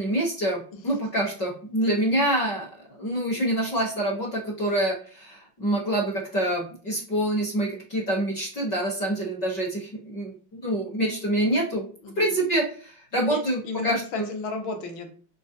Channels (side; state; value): right; late; 5.3 ms